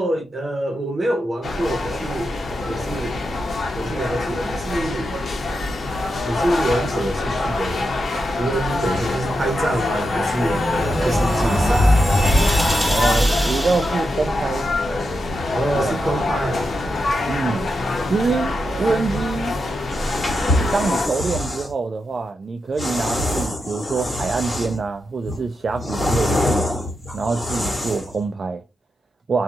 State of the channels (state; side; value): normal; both; correlation 0.87